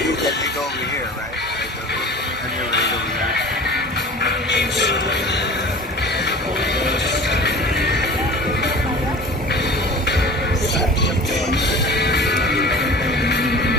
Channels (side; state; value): both; normal; correlation 0.39